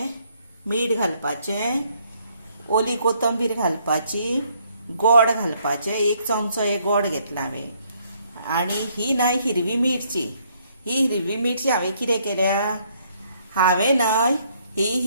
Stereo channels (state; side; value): inverted; both; correlation -0.68